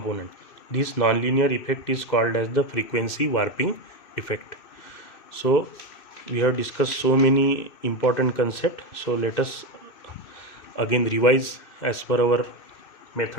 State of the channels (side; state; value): right; late; 2.6 ms